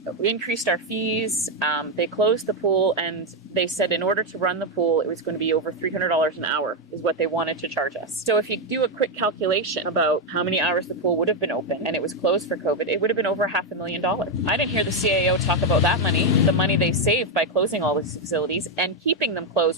increased our fees, they closed the pool, and they said in order to run the pool, it was going to be over $300 an hour is what they wanted to charge us. So if you do a quick calculation about how many hours the pool would have been open and it was closed for COVID, it would have been over $500,000. I didn't hear the CAO talk about that money, the money they saved by closing all these facilities and keeping them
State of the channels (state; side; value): normal; both; correlation 0.04